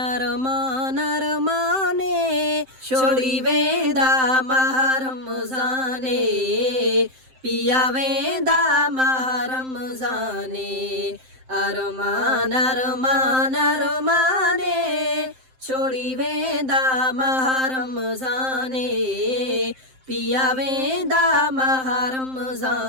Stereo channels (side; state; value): left; late; 7.7 ms